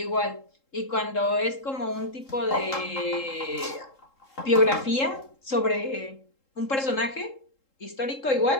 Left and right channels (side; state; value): right; late; 3.7 ms